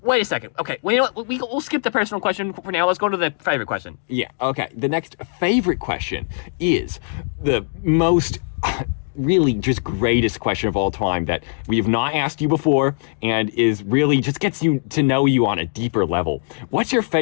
Wait a second. Okay. Well, you know what? We'll skip the personal question for now. Let's go to the favorite question. Yeah. Okay. The next favorite question is the most. Really just greatest question of all time that we have not asked you before and is really just gets you to know you on a deeper level. What's your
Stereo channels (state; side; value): silent; right; digital silence